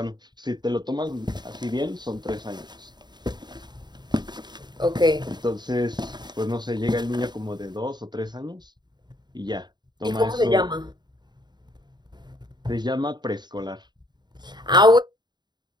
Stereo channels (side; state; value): left; late; 0.21 ms